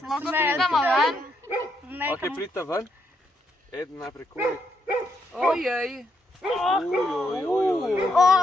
smedama ven. Ok, pridite ven. Eden najprej Kori. Ojej.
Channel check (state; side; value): normal; both; correlation 0.77